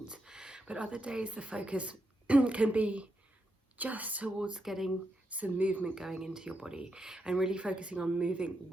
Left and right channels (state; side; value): normal; both; correlation 0.83